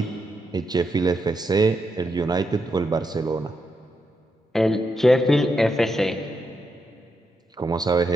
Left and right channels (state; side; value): normal; both; correlation 0.82